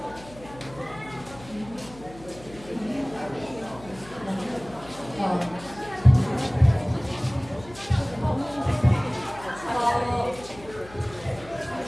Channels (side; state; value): left; noise; hum, 19 dB below the sound